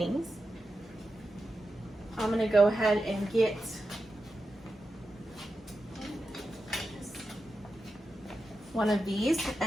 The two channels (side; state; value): both; normal; correlation 0.90